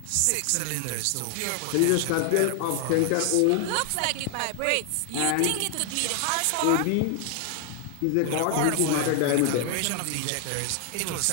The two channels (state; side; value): different; both; correlation 0.00